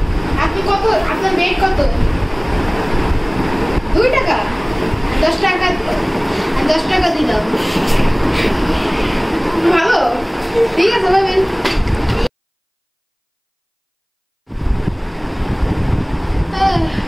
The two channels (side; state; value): both; identical; correlation 1.00